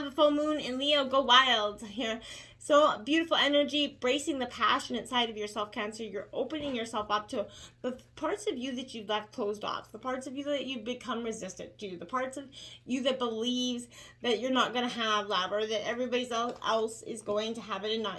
a full moon in Leo. Go wild here. So beautiful energy, bracing the passionate side of yourself, Cancer. You're opening yourself up to the parts of you that you've left closed off, the parts of you that you've become resistant to, the parts of you that believes that you're not going to have love, or that everybody else is going to have it and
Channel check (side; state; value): both; identical; correlation 1.00